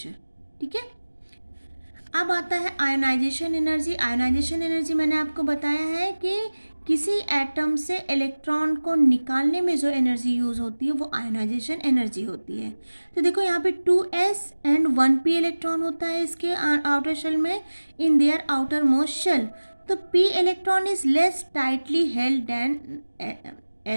ठीक है। अब आता है आयोनाइजेशन एनर्जी। आयोनाइजेशन एनर्जी मैंने आपको बताया है कि किसी एटम से इलेक्ट्रॉन को निकालने में जो एनर्जी यूज़ होती है वो आयोनाइजेशन एनर्जी होती है। तो देखो यहाँ पे 2s एंड 1p इलेक्ट्रॉन होता है इसके आउटर शेल में, in their outermost shell. तो p electron is less tightly held than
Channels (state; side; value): inverted; both; correlation -1.00